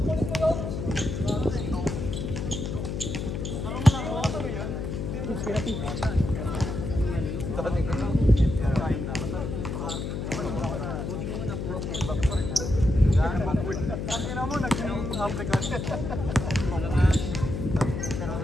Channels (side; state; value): left; noise; hum, 4 dB below the sound